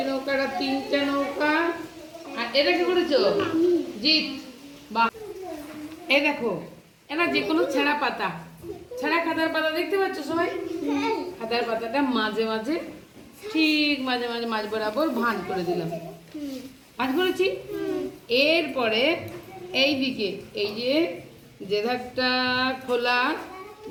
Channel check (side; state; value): both; identical; correlation 1.00